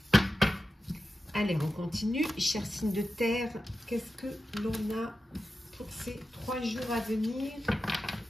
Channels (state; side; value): normal; both; correlation 0.92